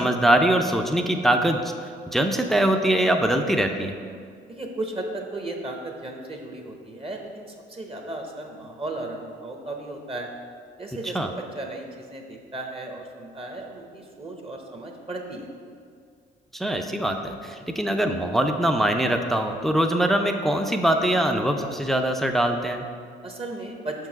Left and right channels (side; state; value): both; normal; correlation 0.75